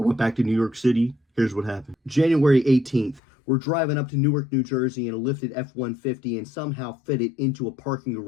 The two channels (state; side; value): drops out; right; at 3.2 s